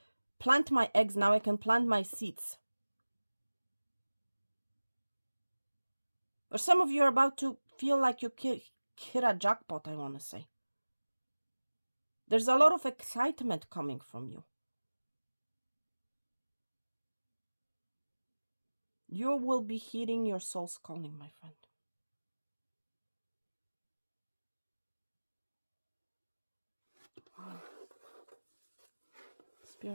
plant my eggs. Now I can plant my seeds. Or some of you are about to feel like you hit a jackpot, I want to say. There's a lot of excitement coming from you. You will be heeding your soul's calling, my friend. Wow.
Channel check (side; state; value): both; inverted; correlation -1.00